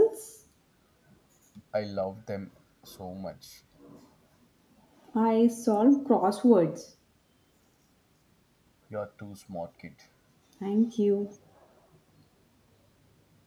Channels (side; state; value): both; identical; correlation 1.00